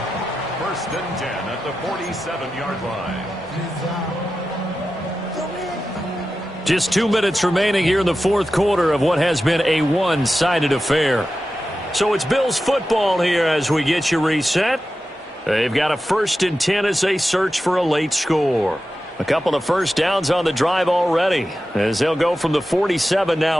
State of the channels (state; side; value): normal; both; correlation 0.92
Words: 1st and 10 at the 47-yard line. Just 2 minutes remaining here in the 4th quarter of what has been a one-sided affair. So it's Bills football here as we get you reset. They've got a 1st and 10 as they search for a late score. A couple of first downs on the drive already as they'll go from the 47